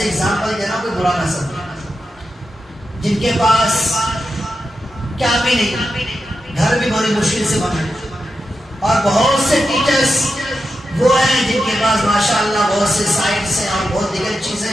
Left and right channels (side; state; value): both; normal; correlation 0.89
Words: ایگزامپل دینا کوئی برا نہ سمجھے, جن کے پاس کیا بھی نہیں, گھر بھی بڑی مشکل سے بنا, اور بہت سے ٹیچرز وہ ہیں جن کے پاس ماشاءاللہ بہت سے سائٹس ہیں اور بہت دیگر چیزیں